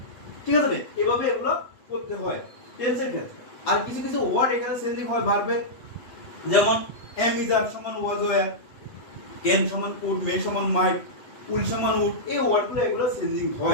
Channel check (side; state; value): right; late; 8.1 ms